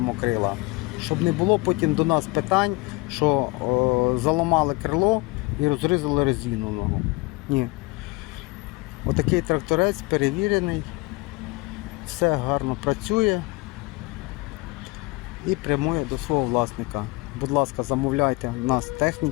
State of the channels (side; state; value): right; quieter; 24.2 dB